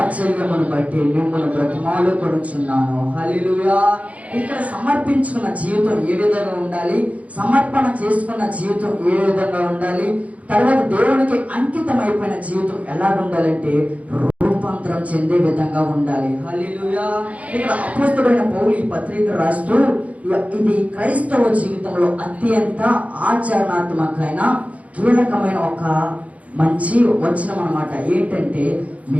బట్టి మిమ్మల్ని బ్రతిమాలుకొనుచున్నాను. హల్లెలూయా. ఇక్కడ సమర్పించుకున్న జీవితం ఏ విధంగా ఉండాలి, సమర్పణ చేసుకున్న జీవితం ఏ విధంగా ఉండాలి, తర్వాత దేవునికి అంకితం అయిపోయిన జీవితం ఎలా ఉండాలంటే రూపాంతరం చెందే విధంగా ఉండాలి. హల్లెలూయా. ఇక్కడ అపోస్తలుడైన పౌలు ఈ పత్రిక రాస్తూ, ఇది క్రైస్తవ జీవితంలో అత్యంత ఆచరణాత్మకమైన కీలకమైన ఒక మంచి వచనం అన్నమాట. ఏంటంటే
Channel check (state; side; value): late; left; 0.067 ms